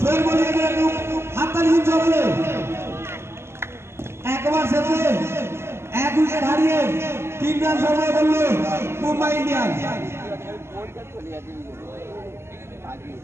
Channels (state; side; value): late; left; 0.12 ms